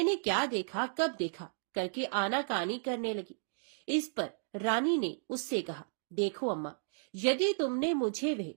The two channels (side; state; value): left; silent; digital silence